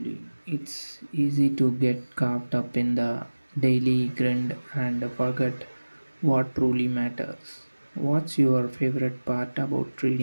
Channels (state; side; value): inverted; both; correlation -1.00